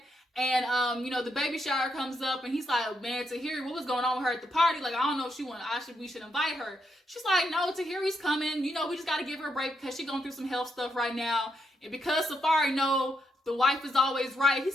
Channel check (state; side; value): normal; both; correlation 0.80